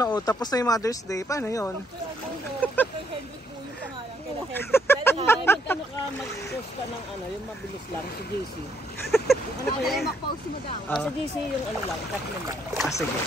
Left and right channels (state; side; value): normal; both; correlation 0.71